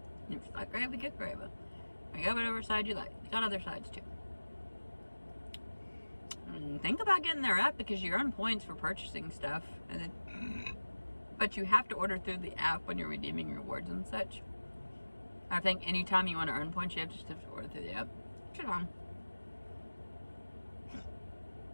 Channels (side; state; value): both; inverted; correlation -1.00